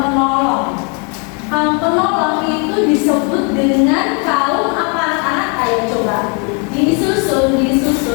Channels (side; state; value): right; quieter; 36.0 dB